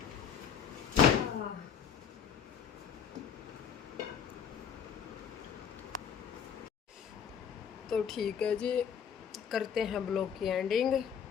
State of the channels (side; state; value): right; quieter; 7.7 dB